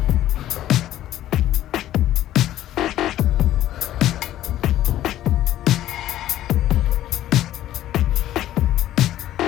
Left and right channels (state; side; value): quieter; right; 13.2 dB